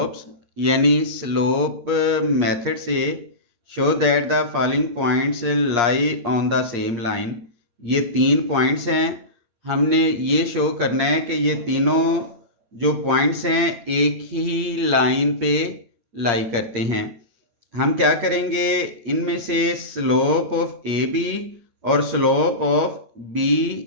यानी स्लोप मेथड से show that the following points lie on the same line. ये 3 पॉइंट्स हैं। हमने ये शो करना है कि ये तीनों जो पॉइंट्स हैं एक ही लाइन पे लाई करते हैं। हम क्या करेंगे, इनमें से स्लोप ऑफ ए बी और slope of B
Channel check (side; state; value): left; late; 8.5 ms